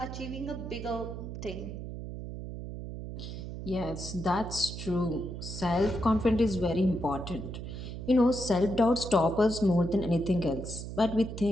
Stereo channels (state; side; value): noise; right; hum, 8 dB below the sound